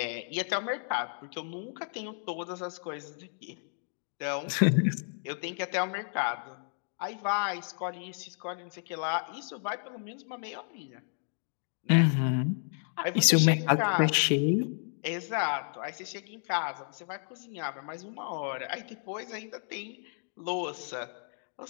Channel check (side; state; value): right; silent; 56 dB below the other